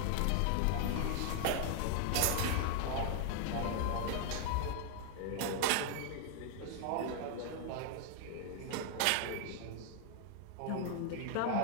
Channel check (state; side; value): different; both; correlation 0.00